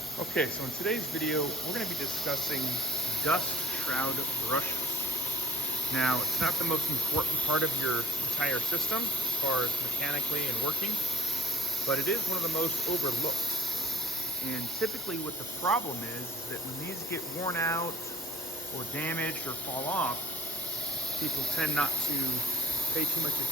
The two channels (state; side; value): normal; both; correlation 0.51